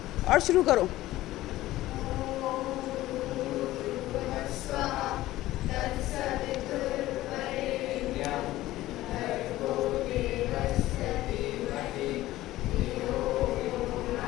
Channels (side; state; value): right; quieter; 16.1 dB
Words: और शुरू करो।